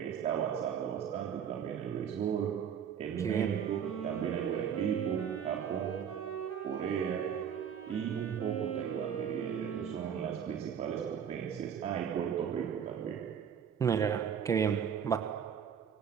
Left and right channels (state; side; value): quieter; left; 8.0 dB